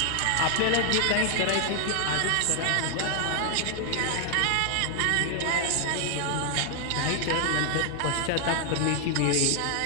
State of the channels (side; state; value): both; different; correlation 0.00